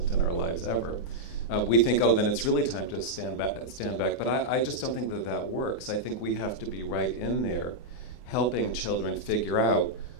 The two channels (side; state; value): right; late; 24 ms